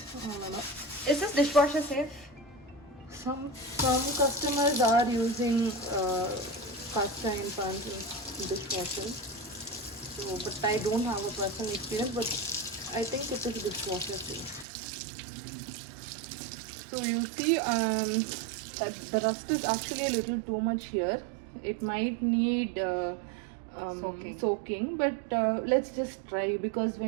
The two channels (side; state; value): left; drops out; at 14.7 s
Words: Is this dishwasher safe? Some customers are using cast iron pans in dishwashers. So, but I don't have a personal experience. But I think it is dishwasher safe. So you see that the rust is actually a little too much here. It might need soaking, but let's just try, because